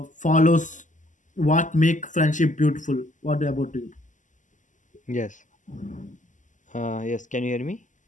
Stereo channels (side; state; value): right; late; 0.37 ms